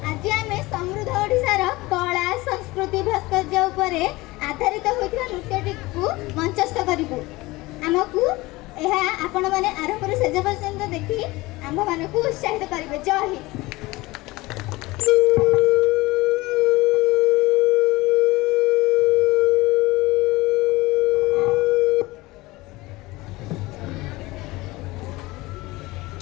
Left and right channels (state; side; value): quieter; right; 20.8 dB